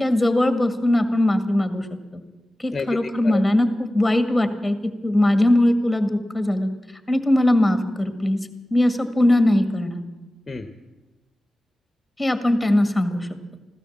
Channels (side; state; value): both; normal; correlation 0.96